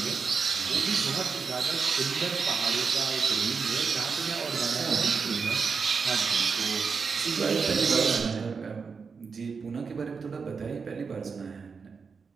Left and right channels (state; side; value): quieter; left; 5.3 dB